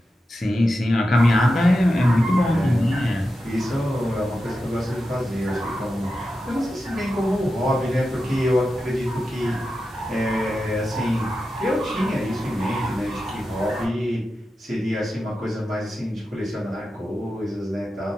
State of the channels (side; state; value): both; normal; correlation 0.90